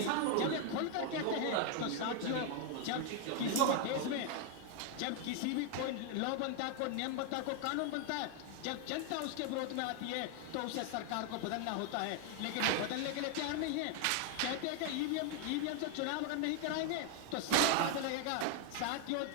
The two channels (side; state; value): both; different; correlation 0.00